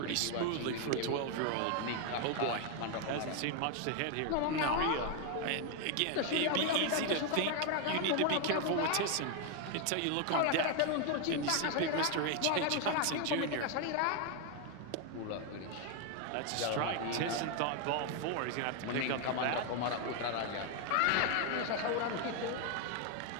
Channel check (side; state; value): both; different; correlation 0.01